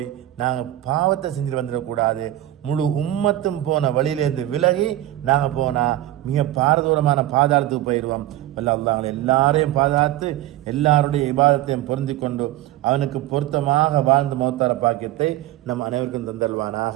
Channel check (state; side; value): quieter; left; 14.5 dB